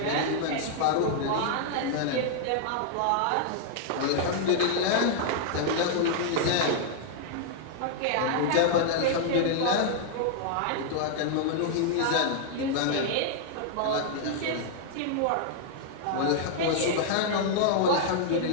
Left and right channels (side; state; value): both; different; correlation -0.01